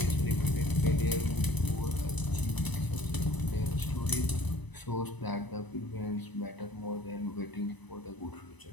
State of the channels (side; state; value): right; late; 1.0 ms